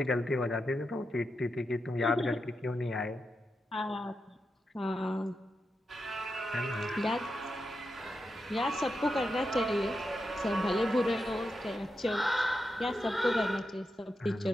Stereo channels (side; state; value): both; normal; correlation 0.87